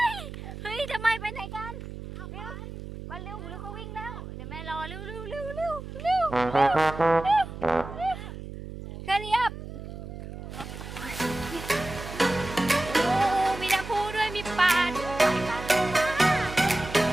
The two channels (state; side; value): noise; right; hum, 10 dB below the sound